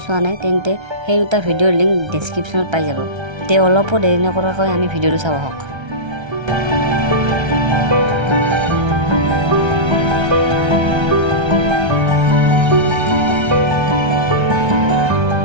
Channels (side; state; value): left; late; 1.3 ms